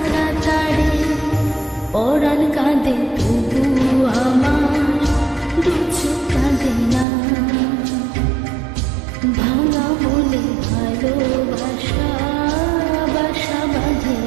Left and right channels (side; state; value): left; drops out; at 7.1 s